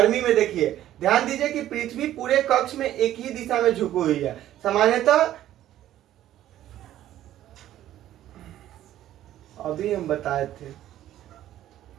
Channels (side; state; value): left; quieter; 12.8 dB